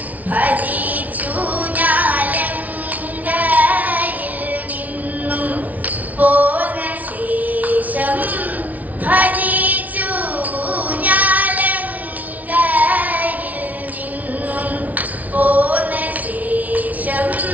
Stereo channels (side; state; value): left; late; 0.073 ms